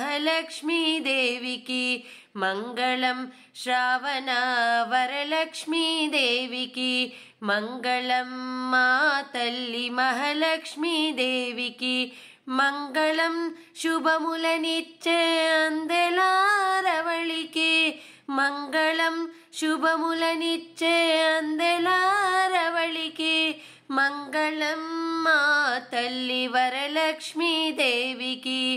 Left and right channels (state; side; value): identical; both; correlation 1.00